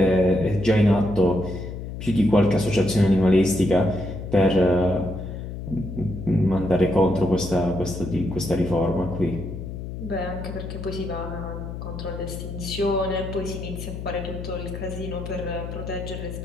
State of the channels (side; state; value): left; noise; hum, 8 dB below the sound